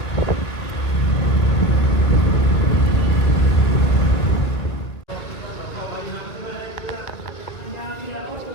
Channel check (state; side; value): late; right; 2.0 ms